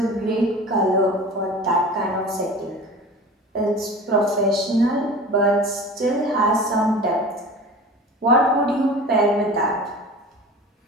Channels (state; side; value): normal; both; correlation 0.37